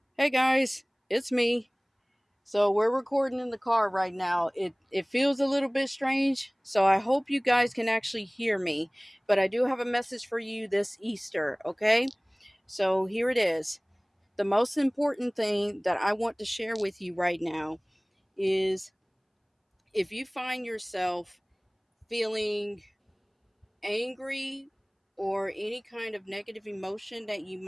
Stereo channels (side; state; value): both; identical; correlation 1.00